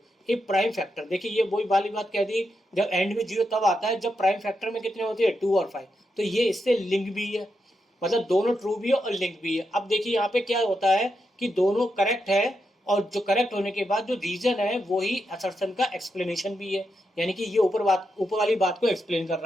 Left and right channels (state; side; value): normal; both; correlation 0.84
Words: ये प्राइम फैक्टर, देखिए ये वही वाली बात कह दी, जब एंड में जीरो तब आता है जब प्राइम फैक्टर में कितने होते हैं, 2 और 5। तो ये इससे लिंक भी है, मतलब दोनों ट्रू भी है और लिंक भी है। अब देखिए यहाँ पे क्या होता है कि दोनों करेक्ट है, और जो करेक्ट होने के बाद जो रीजन है वो ही असर्शन का एक्सप्लेनेशन भी है, यानी कि ये ऊपर वाली बात को एक्सप्लेन कर